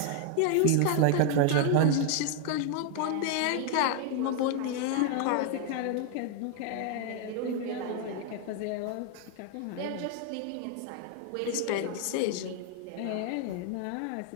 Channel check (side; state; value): both; different; correlation 0.00